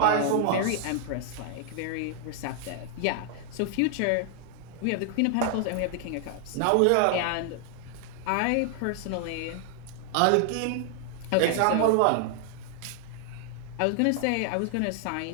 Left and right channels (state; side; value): different; both; correlation 0.00